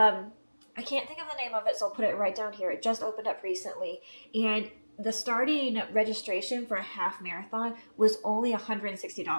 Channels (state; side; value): inverted; both; correlation -1.00